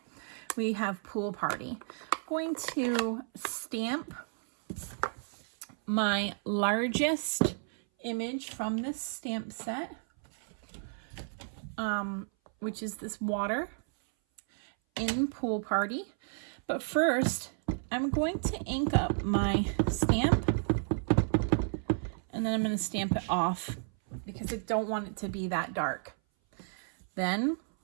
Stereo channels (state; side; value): silent; left; 56 dB below the other